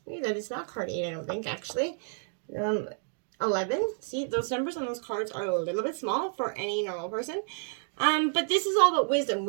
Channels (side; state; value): left; silent; 58 dB below the other